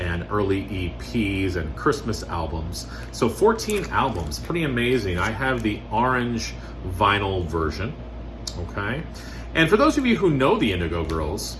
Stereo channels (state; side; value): identical; both; correlation 1.00